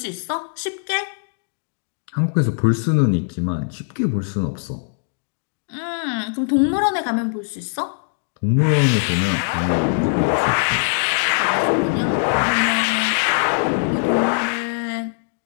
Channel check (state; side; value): silent; right; digital silence